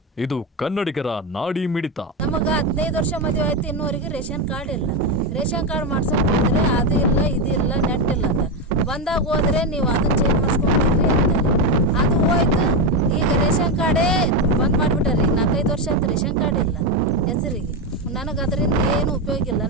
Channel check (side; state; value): both; normal; correlation 0.11